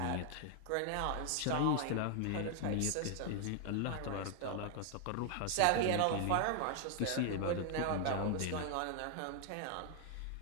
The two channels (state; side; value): different; both; correlation 0.00